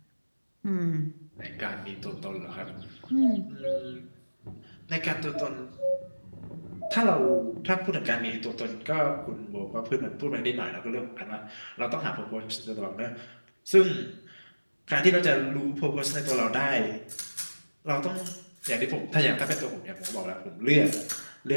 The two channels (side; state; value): both; inverted; correlation -1.00